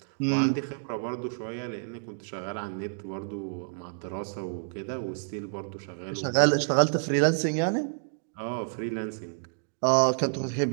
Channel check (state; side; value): silent; left; 59 dB below the other